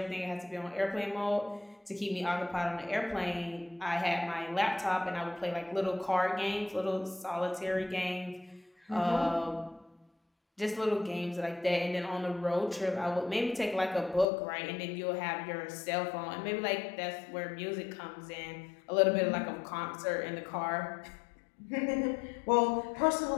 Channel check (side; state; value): right; drops out; at 14.2 s